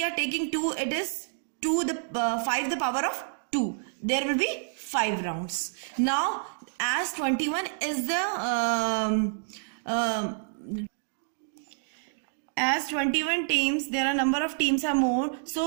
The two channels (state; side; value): silent; left; digital silence